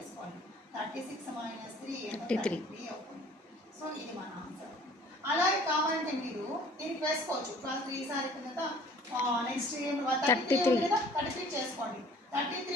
36 - 3 33 అవుతుంది. సో ఇది మన ఆన్సర్. అలాగే కావాలంటే మీరు దీనికి వేసుకోవచ్చు 12 3s అయిపోయిన నెక్స్ట్ 33 కదా 33 చేసుకోండి.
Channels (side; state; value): both; normal; correlation 0.52